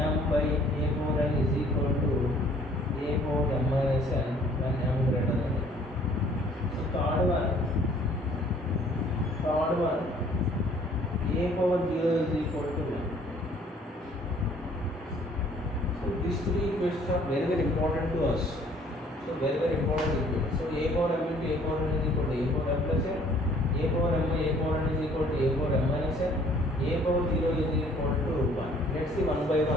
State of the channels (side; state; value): both; normal; correlation 0.58